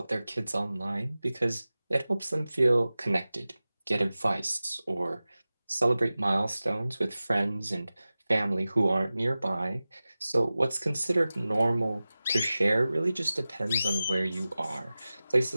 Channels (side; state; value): both; inverted; correlation -0.96